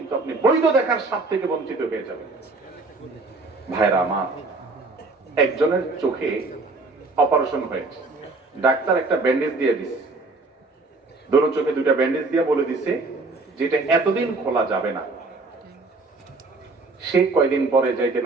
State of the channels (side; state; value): left; quieter; 3.5 dB